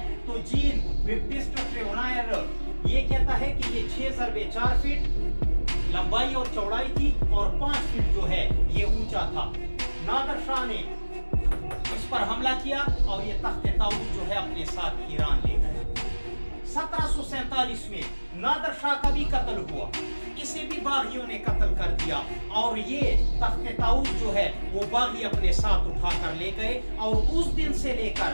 تو جین بیپٹسٹ ٹریونائر یہ کہتا ہے کہ یہ 6 × 4 فٹ لمبائی اور چوڑائی تھی، اور 5 فٹ جو ہے یہ اونچا تھا۔ نادر شاہ نے اس پر حملہ کیا اور یہ تخت طاؤس جو ہے اپنے ساتھ ایران لے گیا۔ 1747 میں نادر شاہ کا بھی قتل ہوا، اسے بھی باغیوں نے قتل کر دیا، اور یہ تخت طاؤس جو ہے وہ باغی اپنے ساتھ اٹھا کر لے گئے، اور اس دن سے لے کر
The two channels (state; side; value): inverted; both; correlation -1.00